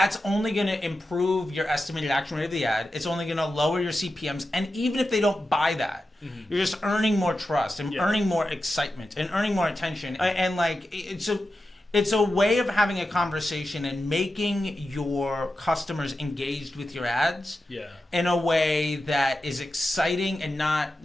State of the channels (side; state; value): both; normal; correlation 0.91